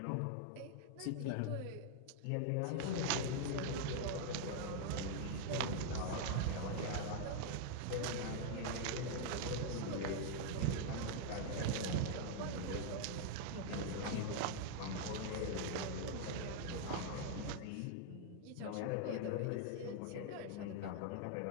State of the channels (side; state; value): both; different; correlation 0.00